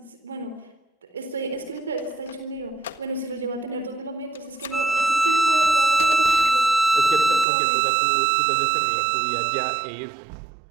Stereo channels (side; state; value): left; drops out; at 7.5 s